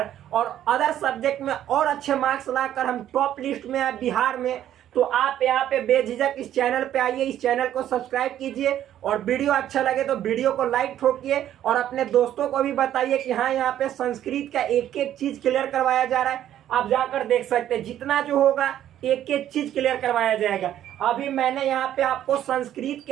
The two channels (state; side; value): quieter; left; 11.5 dB